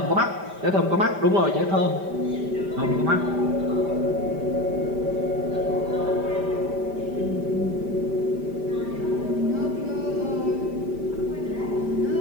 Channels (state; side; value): late; left; 5.1 ms